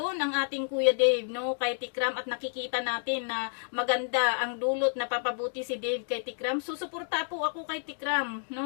ang ating Kuya Dave, no? Kay Tikram, at nakikita natin na maganda ang dulot na papabuti si Dave kay Tikram. Susuporta po ako kay Tikram,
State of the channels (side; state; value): right; silent; digital silence